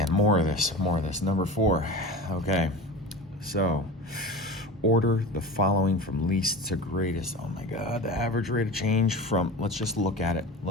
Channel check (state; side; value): normal; both; correlation 0.32